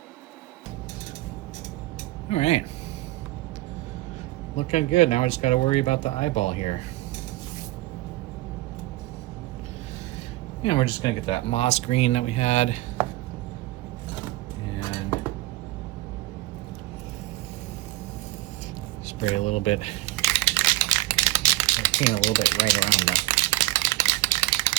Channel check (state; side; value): quieter; left; 18.7 dB